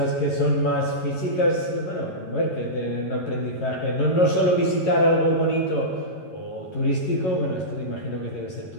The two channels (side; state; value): right; late; 11 ms